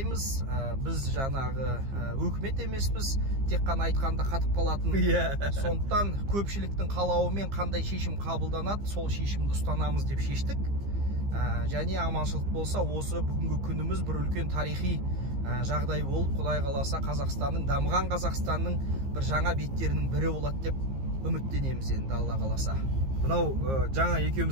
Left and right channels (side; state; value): left; late; 15 ms